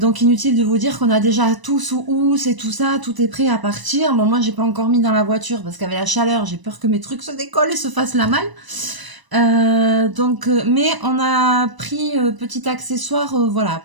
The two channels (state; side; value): late; left; 1.0 ms